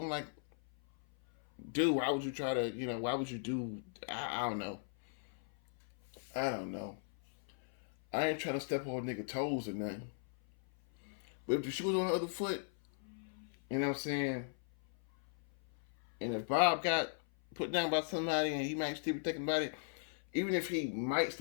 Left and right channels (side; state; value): right; silent; 53 dB below the other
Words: I'm like, dude, why would you try to, why would you do, I don't know. I don't know. I ain't trying to step on nigga toes or nothing. But if the shoe was on the other foot, you know what I'm saying? And if Bob got put down by somebody and he might still be thinking about it, even if he might